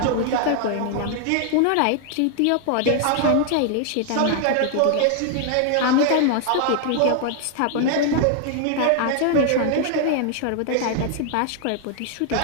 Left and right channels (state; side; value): different; both; correlation 0.00